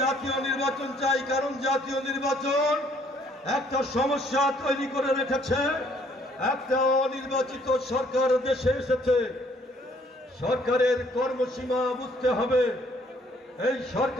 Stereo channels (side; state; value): both; normal; correlation 0.63